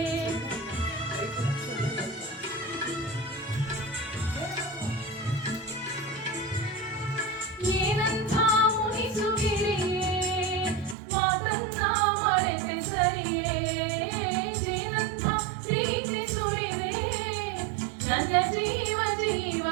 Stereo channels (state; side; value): drops out; left; at 11.0 s